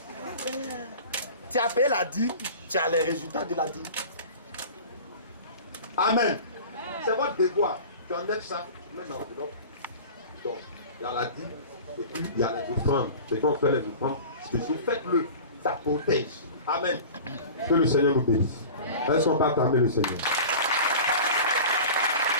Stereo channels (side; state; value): both; inverted; correlation -0.37